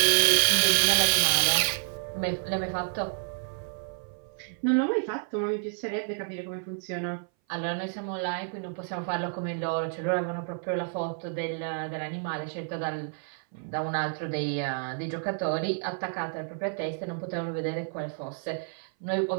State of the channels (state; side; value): silent; left; 57 dB below the other